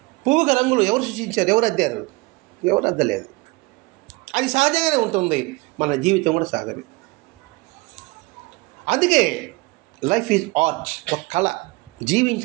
పువ్వుగా రంగులు ఎవరు సృష్టించారు? ఎవరు అద్దారు? ఎవరు అద్దలేదు. అది సహజంగానే ఉంటుంది. మన జీవితం కూడా సహజమే. అందుకే లైఫ్ ఈజ్ ఆర్ట్, ఒక కళ.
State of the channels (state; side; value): quieter; left; 24.1 dB